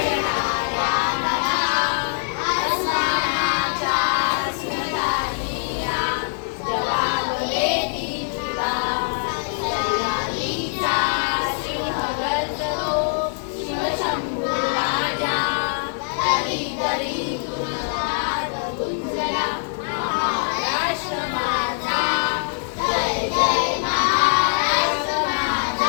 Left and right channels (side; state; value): right; silent; 63 dB below the other